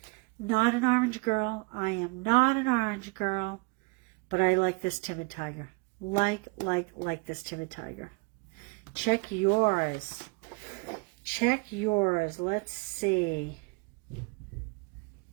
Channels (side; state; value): left; quieter; 29.0 dB